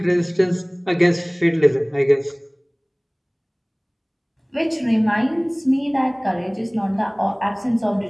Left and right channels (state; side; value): identical; both; correlation 1.00